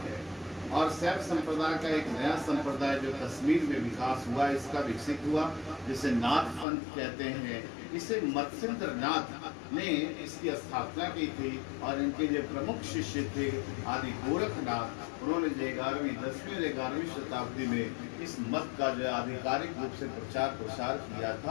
है। और शैव संप्रदाय का एक नया संप्रदाय जो कश्मीर में विकास हुआ, इसका विकसित हुआ, जिसे नाथ पंथ कहते हैं। इसे मत्स्येंद्र नाथ ने इसकी स्थापना की थी और इनके जो प्रमुख शिष्य थे आदि गोरखनाथ, उन्होंने जो 11वीं 10वीं और 11वीं शताब्दी में इस मत का जो आधिकारिक रूप से प्रचार प्रसार किया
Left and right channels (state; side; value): drops out; right; at 6.7 s